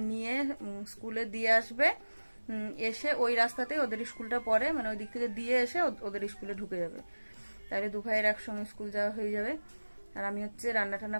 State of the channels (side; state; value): both; inverted; correlation -1.00